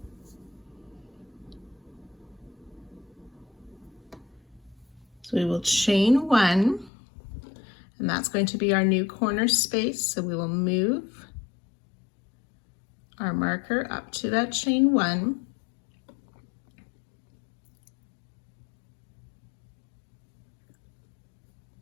So we will chain 1, and that's going to be our new corner space. So we will move our marker up to that chain 1.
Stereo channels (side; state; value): right; drops out; at 6.9 s